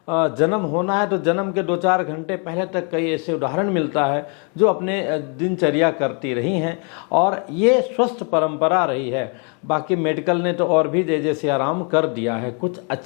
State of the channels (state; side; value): quieter; right; 37.8 dB